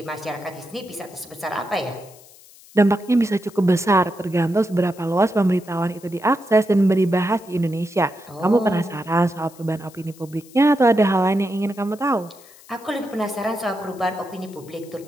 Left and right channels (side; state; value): left; noise; hiss, 23 dB below the sound